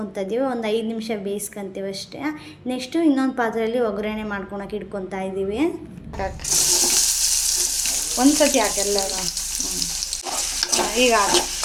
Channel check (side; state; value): both; identical; correlation 1.00